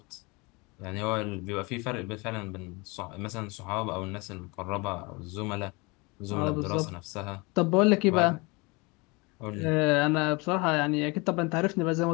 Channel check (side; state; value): right; quieter; 26.9 dB